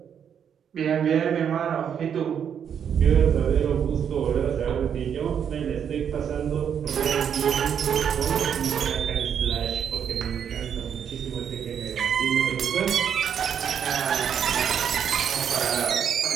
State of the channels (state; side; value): quieter; left; 8.2 dB